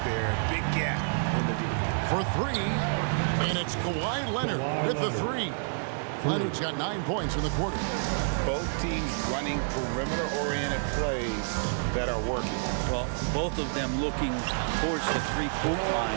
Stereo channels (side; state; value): left; silent; digital silence